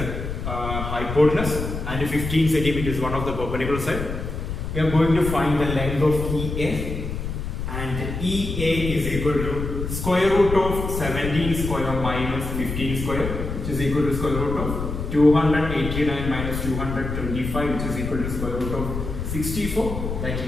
hypotenuse, and 15 centimeter is one of the perpendicular side. We are going to find the length of EA, and EA is equal to square root of 17 square minus 15 square, which is equal to square root of 289 minus 225, which is equal to square root of 64, that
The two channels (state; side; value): noise; left; rumble, 5 dB below the sound